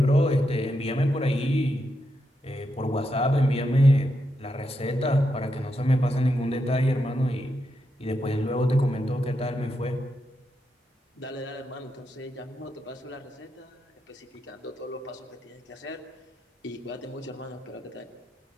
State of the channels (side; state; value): both; normal; correlation 0.84